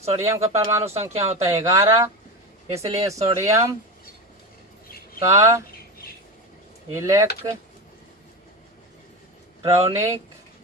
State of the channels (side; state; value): both; normal; correlation 0.21